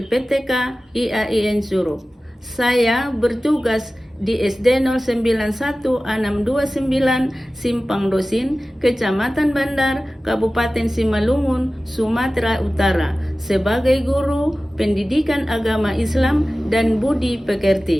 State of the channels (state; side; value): normal; both; correlation 0.96